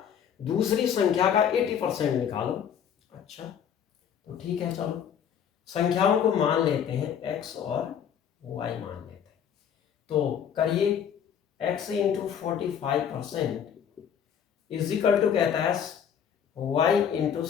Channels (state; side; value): quieter; right; 8.4 dB